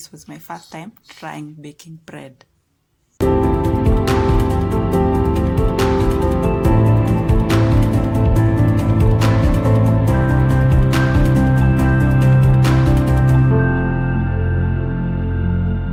was my first time trying baking bread.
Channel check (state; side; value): identical; both; correlation 1.00